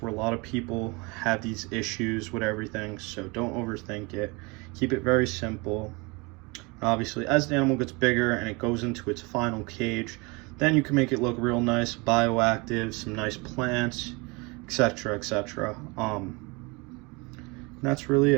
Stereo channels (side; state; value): left; quieter; 27.2 dB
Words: a lot of people have these issues with everything. So don't overthink it. Keep it very simple. Obviously, as the animal gets bigger and it goes into its final cage, then you can make it look real nice, bioactive, some nice plants, etc., etc. That's really